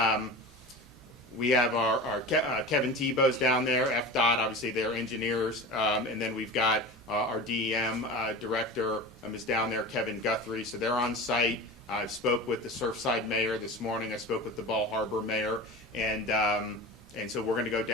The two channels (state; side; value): normal; both; correlation 0.31